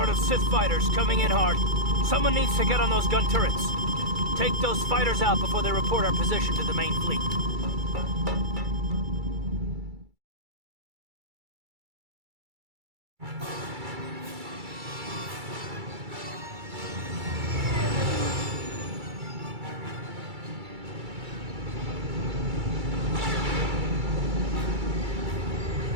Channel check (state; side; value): late; left; 2.3 ms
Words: of Sith fighters coming in hard. Someone needs to get on those gun turrets. Take those fighters out before they report our position to the main fleet.